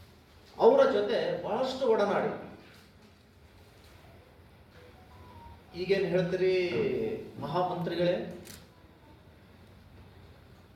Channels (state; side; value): identical; both; correlation 1.00